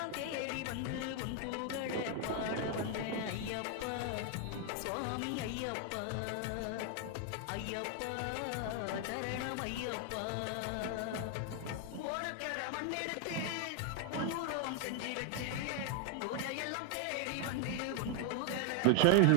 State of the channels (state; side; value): different; both; correlation 0.00